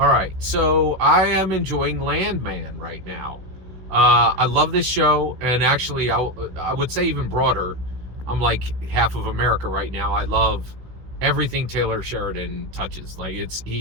right, so I am enjoying Landman right now. I love this show, and actually, I would say even broader. I'm like half of America right now. I love everything Taylor Sheridan touches. Like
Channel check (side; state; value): left; late; 16 ms